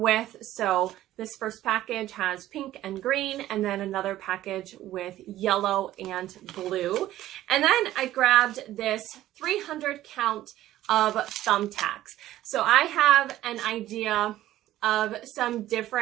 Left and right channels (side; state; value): left; quieter; 14.1 dB